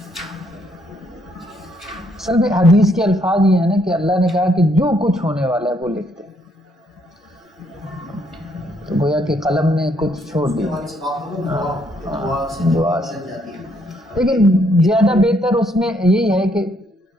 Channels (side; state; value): both; normal; correlation 0.71